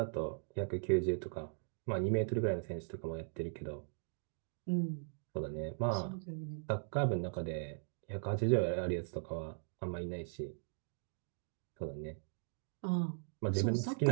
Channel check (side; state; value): left; silent; digital silence